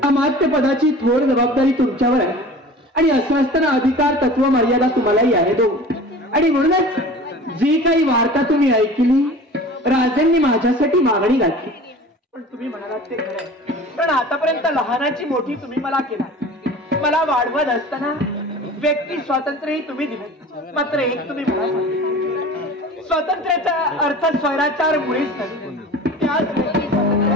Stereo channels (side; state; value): both; normal; correlation 0.40